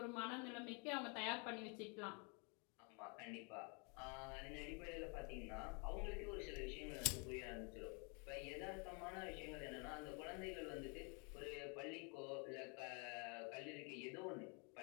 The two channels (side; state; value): right; quieter; 34.6 dB